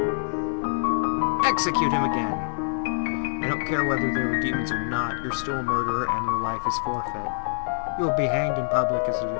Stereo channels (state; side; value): silent; right; digital silence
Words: Execute him again! I don't care whether they were demons or not, you're still a murderer and your life is forfeit. You will be hanged in public as a